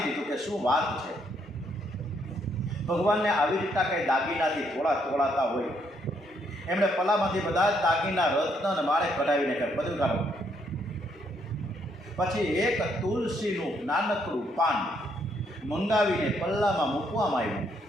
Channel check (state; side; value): normal; both; correlation 0.72